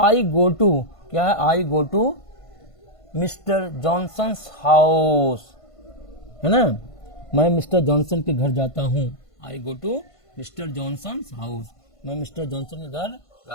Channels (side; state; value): right; late; 1.5 ms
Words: गो टू, क्या है, I go to mister Johnson's house, है ना, मैं मिस्टर जॉनसन के घर जाता हूँ। I go to mister Johnson's house, मैं मिस्टर जॉनसन के घर